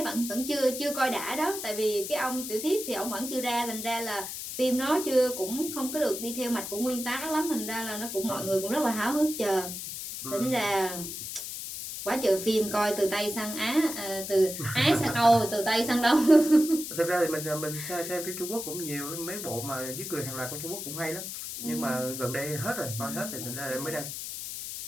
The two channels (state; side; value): noise; left; hiss, 7 dB below the sound